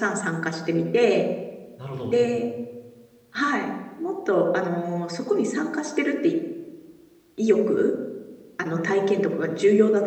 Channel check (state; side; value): identical; both; correlation 1.00